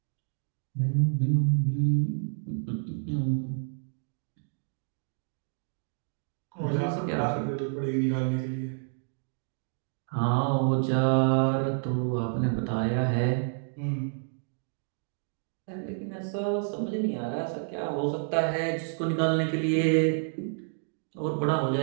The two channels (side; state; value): left; silent; digital silence